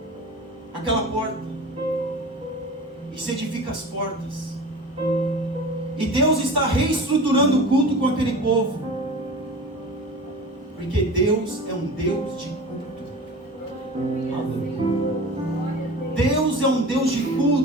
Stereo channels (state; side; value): normal; both; correlation 0.35